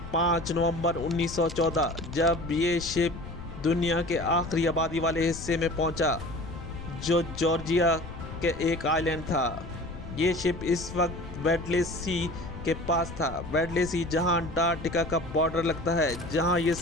5 नवंबर 1914 जब ये शिप दुनिया के आखिरी आबादी वाले हिस्से में पहुंचा, जो जॉर्जिया के एक आइलैंड था। ये शिप इस वक्त वेडले सी के पास था। वेडले सी जहां अंटार्कटिका का बॉर्डर लगता है, जहां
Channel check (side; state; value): left; noise; rumble, 12 dB below the sound